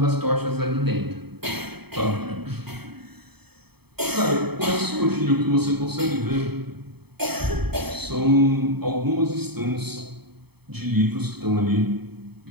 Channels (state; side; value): late; left; 0.97 ms